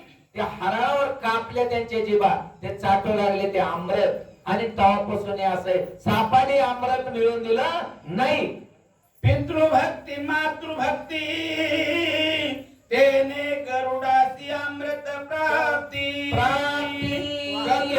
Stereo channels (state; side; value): identical; both; correlation 1.00